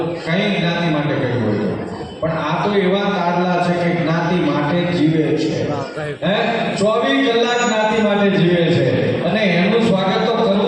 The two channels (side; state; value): both; identical; correlation 1.00